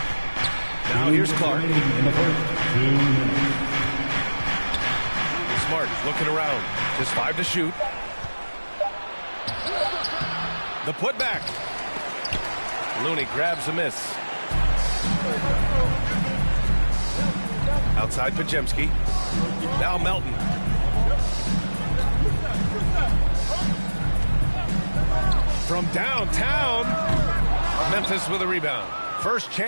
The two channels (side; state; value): both; inverted; correlation -1.00